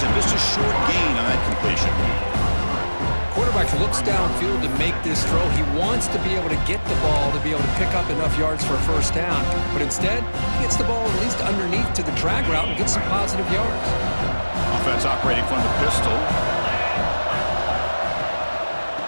him. Just a short gain on that completion. Quarterback looks downfield to make this throw. He wants to be able to get the ball to be able to pick up enough yards for a first down. But instead, he gets the ball at least underneath to the drag route and gets some positive yards. Offense operating from the pistol.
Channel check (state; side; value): inverted; both; correlation -1.00